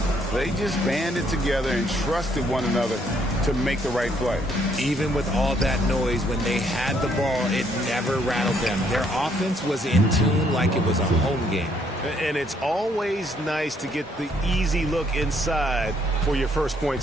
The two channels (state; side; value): normal; both; correlation 0.69